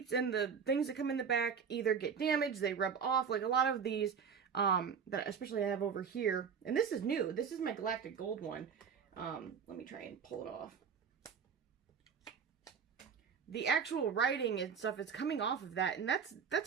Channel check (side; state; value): left; quieter; 6.7 dB